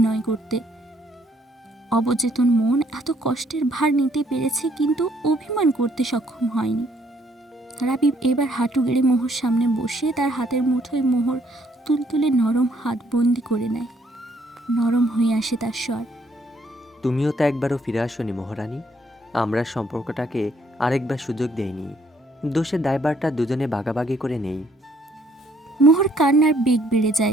করতে। অবচেতন মন এত কষ্টের ভার নিতে পেরেছে, কিন্তু অভিমান করতে সক্ষম হয়নি। রাবিব এবার হাঁটু গেড়ে মোহর সামনে বসে তার হাতের মুঠোয় মোহর তুলতুলে নরম হাত বন্দি করে নেয়। নরম হয়ে আসে তার স্বর। তুমিও তো একবারও ফিরে আসোনি মহারানী। আমরা সম্পর্কটাকে আরেকবার সুযোগ দেইনি। দোষের দায়ভারটা দুজনে ভাগাভাগি করে নেই। মোহর কান্নার বেগ বেড়ে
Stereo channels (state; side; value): normal; both; correlation 0.67